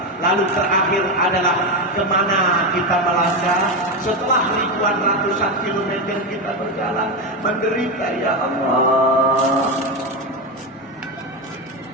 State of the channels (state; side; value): normal; both; correlation 0.12